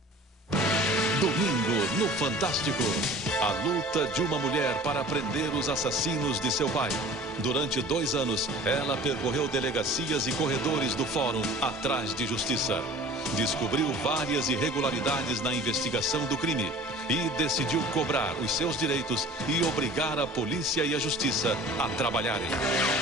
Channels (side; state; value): both; normal; correlation 0.44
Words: Domingo no Fantástico. A luta de uma mulher para prender os assassinos de seu pai. Durante 2 anos, ela percorreu delegacias e corredores do fórum atrás de justiça. Descobriu várias irregularidades na investigação do crime e decidiu cobrar os seus direitos e obrigar a polícia e a justiça a trabalharem.